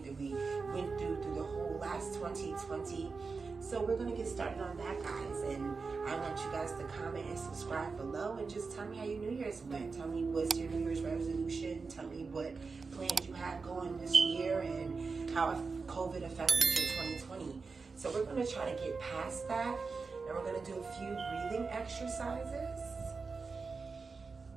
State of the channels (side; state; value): left; quieter; 4.6 dB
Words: that we went through the whole last 2020. So we're going to get started on that, guys, and I want you guys to comment and subscribe below and just tell me how your New Year's went. Tell me what's your New Year's resolution. Tell me what plans you have going this year and how COVID affected your 2020. So we're going to try to get past that, and we're going to do a few breathing exercises.